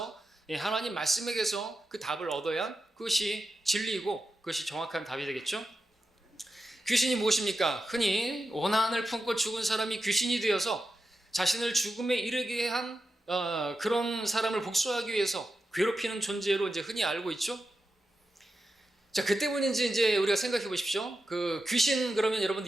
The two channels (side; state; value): both; normal; correlation 0.89